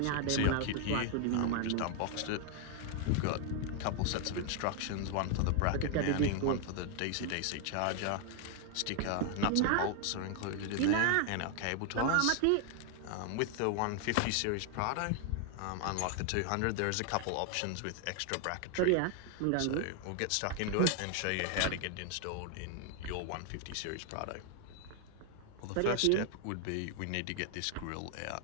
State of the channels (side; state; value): both; different; correlation 0.00